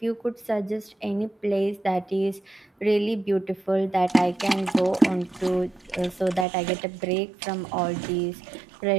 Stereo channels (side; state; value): left; drops out; at 6.5 s